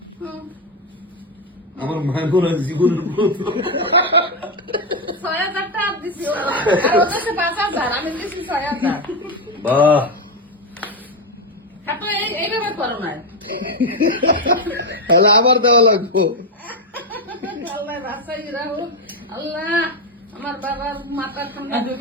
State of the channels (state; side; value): normal; both; correlation 0.09